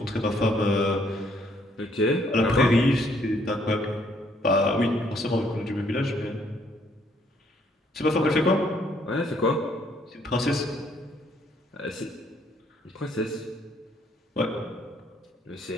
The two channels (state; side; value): normal; both; correlation 0.67